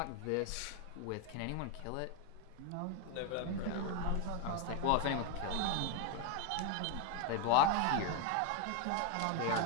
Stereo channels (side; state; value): both; different; correlation 0.01